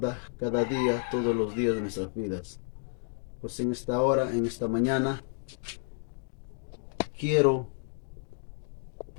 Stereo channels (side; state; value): right; silent; 57 dB below the other